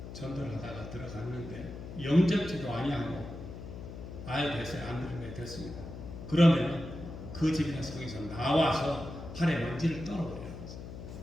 전도를 하다가 들어갔는데 영접지도 아니하고 아예 됐어요. 안 들은 게 됐습니다. 그러면 그 집이나 성에서 나와서 팔에 먼지를 떨어버려요.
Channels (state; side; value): noise; left; hum, 11 dB below the sound